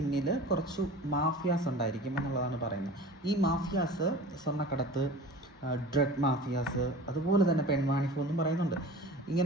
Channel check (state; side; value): normal; both; correlation 0.39